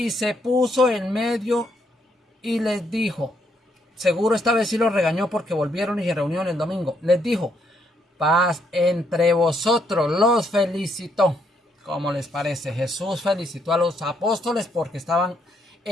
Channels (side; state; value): both; normal; correlation 0.73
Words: se puso en medio y les dijo, seguro esta vez sí los regañó porque volvieron y se reunieron el domingo, les dijo, paz entre vosotros, los felicitó. ¿Cómo les parece? Jesús felicitó a los apóstoles porque estaban